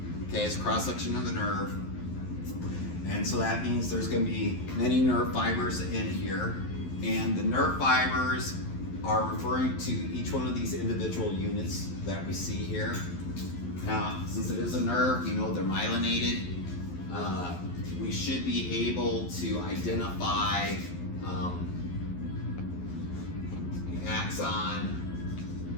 Okay, it's a cross-section of the nerve. And so that means there's going to be many nerve fibers in here. And the nerve fibers are referring to each one of these individual units that we see here. Now, since it is a nerve, you know they're myelinated. We should be able to identify the axon,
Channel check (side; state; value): right; late; 11 ms